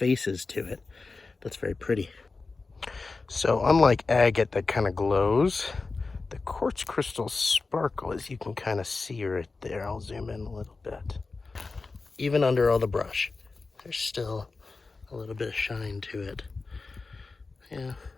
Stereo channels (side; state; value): right; quieter; 4.0 dB